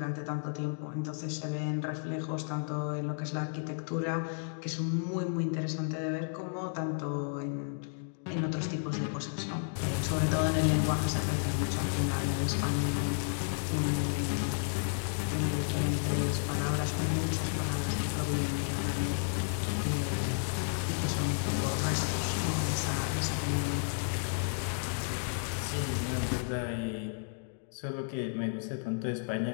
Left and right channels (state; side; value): silent; right; digital silence